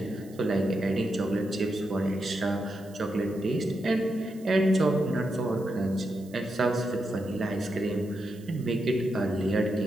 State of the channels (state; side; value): noise; right; hiss, 25 dB below the sound